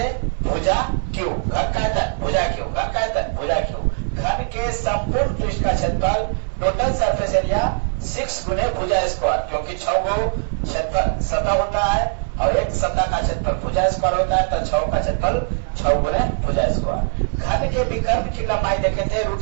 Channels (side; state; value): left; silent; 60 dB below the other